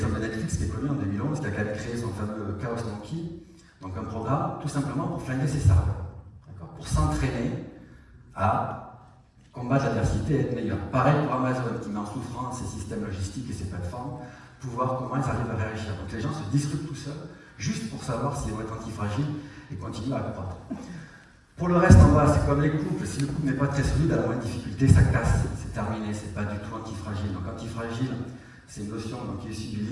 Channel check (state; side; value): identical; both; correlation 1.00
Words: de Netflix qui est connu en 2011, qui a quand même créé son fameux Chaos Monkey, donc un programme tout simplement pour flinguer ses serveurs, pour s'entraîner à combattre l'adversité et être meilleur. Pareil pour Amazon qui met en souffrance ses systèmes logistiques et ses plateformes, pour voir comment ils arrivent à réagir. Donc les gens se discutent tout seuls, juste pour savoir s'ils vont être antifragiles et continuer à croître. Pour le reste en bas, c'est comme les couples, si le couple n'est pas très solide, à la moindre difficulté, ça casse, c'est terminé, c'est pas du tout antifragile. Donc antifragile, c'est une notion qui est issue du